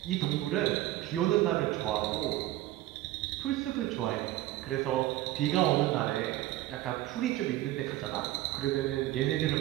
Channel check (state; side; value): quieter; left; 15.5 dB